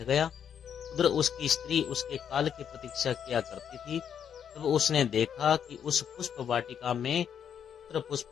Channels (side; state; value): right; quieter; 8.3 dB